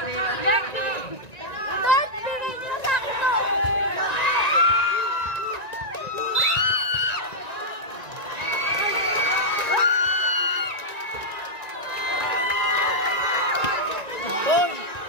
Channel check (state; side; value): late; right; 1.9 ms